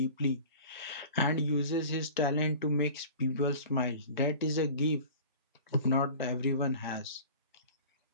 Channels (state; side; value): inverted; both; correlation -0.41